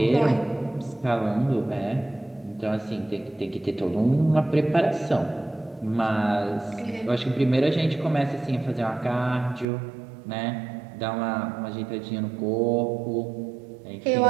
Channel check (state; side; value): drops out; left; at 9.7 s